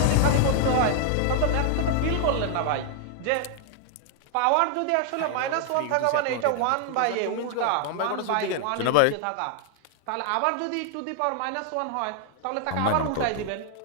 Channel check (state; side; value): different; both; correlation 0.00